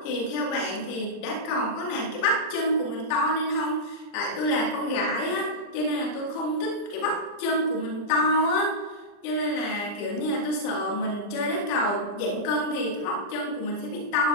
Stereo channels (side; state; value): right; late; 39 ms